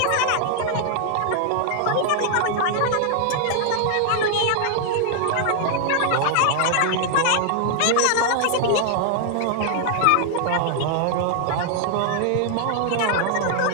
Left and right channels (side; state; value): both; different; correlation 0.00